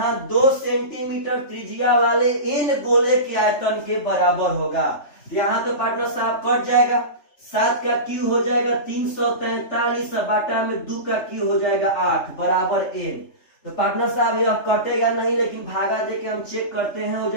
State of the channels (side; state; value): right; late; 3.3 ms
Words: 2 सेंटीमीटर त्रिज्या वाले n गोले के आयतन के बराबर होगा। यहाँ तो पार्टनर साहब कट जाएगा, 7 का क्यू हो जाएगा 343 बाटा में 2 का क्यू हो जाएगा 8 बराबर n। तो पार्टनर साहब यह कटेगा नहीं, लेकिन भागा देके हम चेक करते हैं, हो